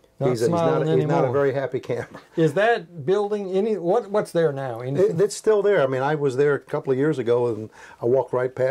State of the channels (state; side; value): identical; both; correlation 1.00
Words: he's not a very happy camper. Is that building what's there now? It's still there. I mean, I was there a couple of years ago, and I walked right